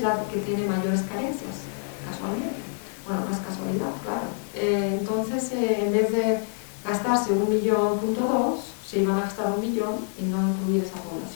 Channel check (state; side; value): silent; right; 61 dB below the other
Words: la que tiene mayores carencias, casualmente. Bueno, no es casualidad, claro. Entonces, en vez de gastarse 1,2 millones, se iban a gastar 1 millón y no incluir esa